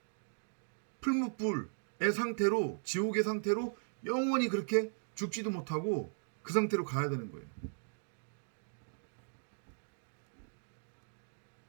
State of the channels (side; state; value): left; silent; digital silence